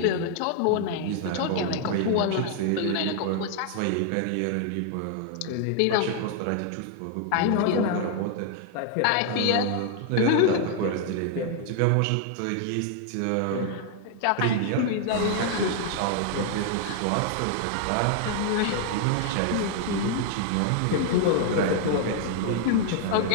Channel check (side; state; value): both; different; correlation 0.00